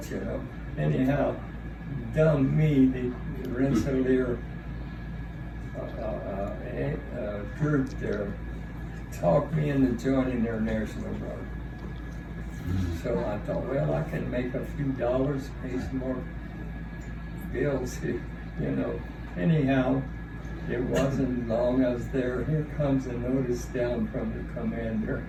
you know. Anyhow, dumb me, the Rensselaer group there talked me into joining their National Guard. So I thought, well, I can make a few dollars, pay some more bills, you know. Anyhow, it wasn't long I was there. Here comes a notice down from the commander.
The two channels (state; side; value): identical; both; correlation 1.00